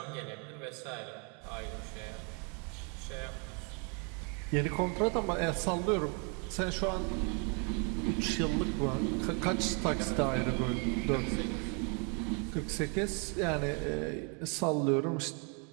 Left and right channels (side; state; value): left; quieter; 36.3 dB